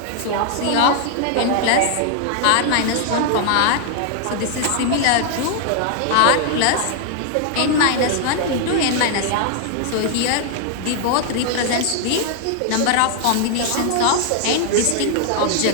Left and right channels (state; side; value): different; both; correlation 0.00